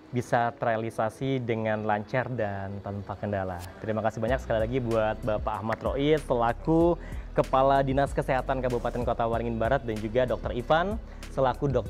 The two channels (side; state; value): both; identical; correlation 1.00